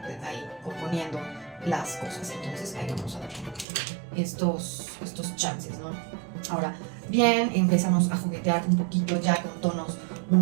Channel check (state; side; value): drops out; left; at 3.7 s